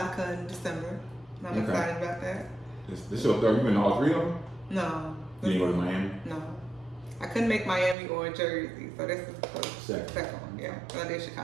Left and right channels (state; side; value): drops out; left; at 8.0 s